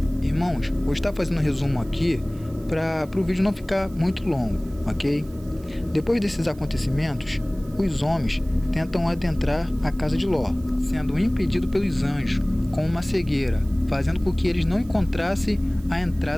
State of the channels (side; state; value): right; noise; hiss, 26 dB below the sound